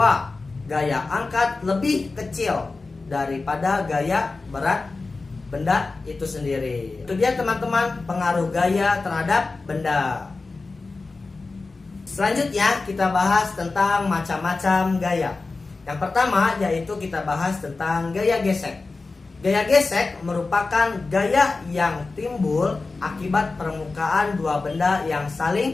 gaya angkat lebih kecil daripada gaya berat benda itu sendiri. Itu dia teman-teman pengaruh gaya terhadap benda. Selanjutnya kita bahas tentang macam-macam gaya. Yang pertama yaitu kita bahas tentang gaya gesek. Gaya gesek merupakan gaya yang timbul akibat permukaan dua benda yang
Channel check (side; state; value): right; quieter; 3.8 dB